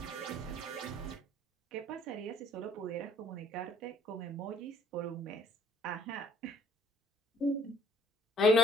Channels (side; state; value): both; normal; correlation 0.60